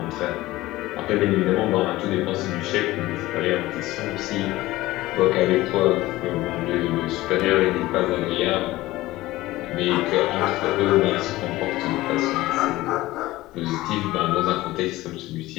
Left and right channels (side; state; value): right; quieter; 17.8 dB